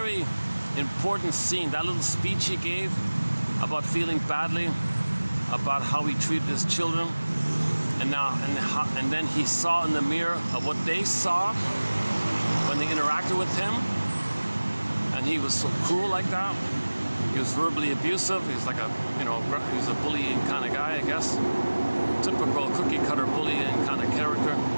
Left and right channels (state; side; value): inverted; both; correlation -1.00